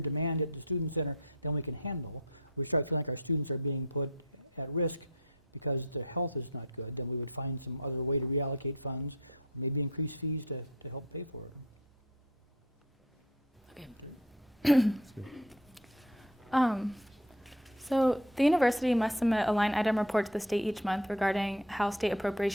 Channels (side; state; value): both; normal; correlation 0.39